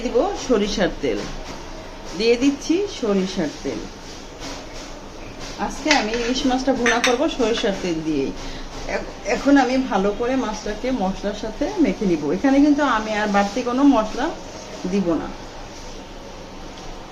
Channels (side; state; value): both; identical; correlation 1.00